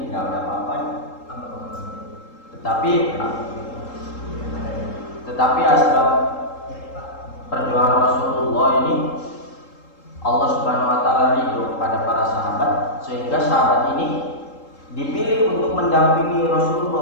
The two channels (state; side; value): late; right; 3.8 ms